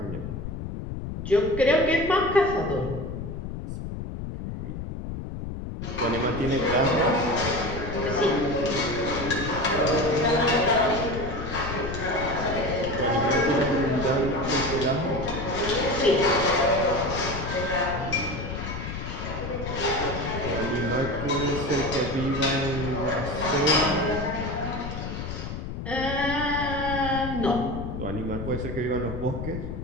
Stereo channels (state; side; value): noise; left; rumble, 6 dB below the sound